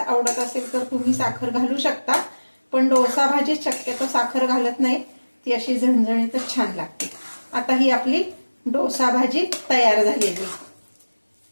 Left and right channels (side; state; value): both; inverted; correlation -1.00